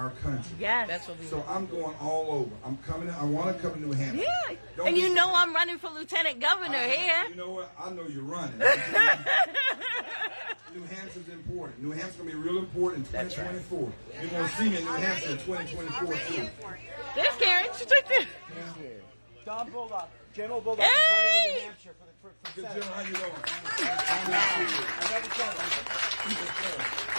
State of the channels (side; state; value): both; inverted; correlation -1.00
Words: country. Yes. That's what we So I'm going all over. I'm coming. I want to come to New Hampshire. Yeah. Don't And you be- know I'm running for lieutenant governor here. You know what? I know you're running. New Hampshire's important. New Hampshire's going to be real important in 2024. You're going to see me in New Hampshire in 2024 too. There's Karen. She's right there. Don Bulldog, General Bulldog, Hey! is running in New Hampshire for Good Senate. General, how you doing?